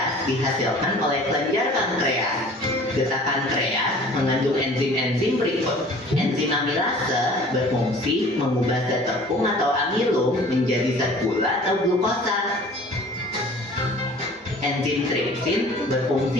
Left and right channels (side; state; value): both; normal; correlation 0.48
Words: dihasilkan oleh kelenjar pankreas. Getah pankreas mengandung enzim-enzim berikut. Enzim amilase berfungsi mengubah zat tepung atau amilum menjadi zat gula atau glukosa. Enzim tripsin